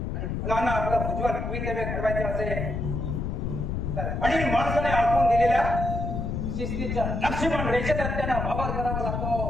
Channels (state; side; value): noise; left; rumble, 2 dB below the sound